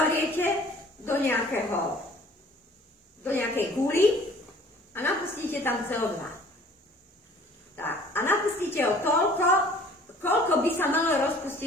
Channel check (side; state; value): both; normal; correlation 0.51